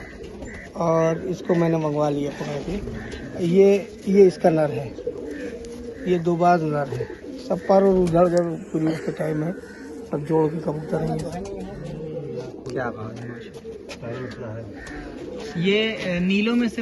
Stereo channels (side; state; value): both; identical; correlation 1.00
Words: और इसको मैंने मंगवा लिया पकड़ के। ये इसका नर है, ये दो बाज नर है। सब पर और उधर उधर पूरी उसके टाइम है, सब जोड़ के कबूतर है क्या बात है, माशाल्लाह। ये नीलों में